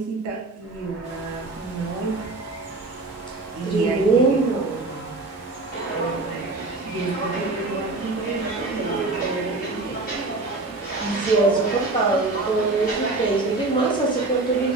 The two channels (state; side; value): quieter; left; 3.2 dB